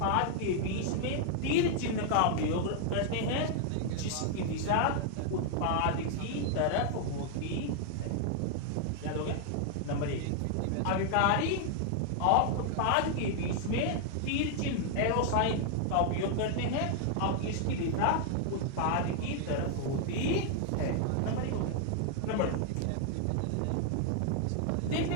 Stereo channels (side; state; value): both; different; correlation 0.00